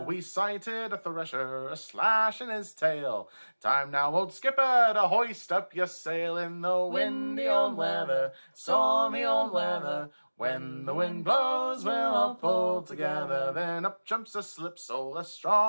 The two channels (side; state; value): both; inverted; correlation -1.00